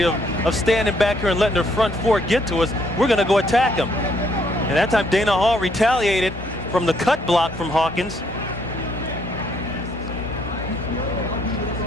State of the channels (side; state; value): both; normal; correlation 0.69